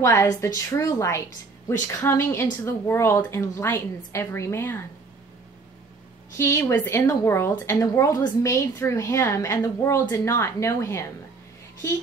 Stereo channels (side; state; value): left; quieter; 4.1 dB